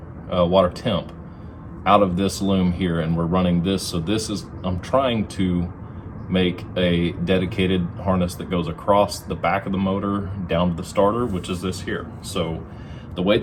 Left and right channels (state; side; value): identical; both; correlation 1.00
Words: water temp out of this loom here, and we're running this. So this is, I'm trying to make a dedicated harness that goes across the back of the motor down to the starter, which is this here. So the way